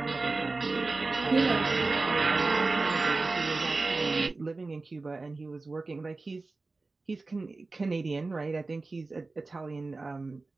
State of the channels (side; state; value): left; quieter; 3.5 dB